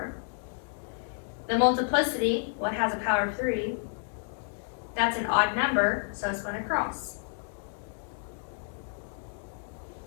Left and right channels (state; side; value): silent; right; digital silence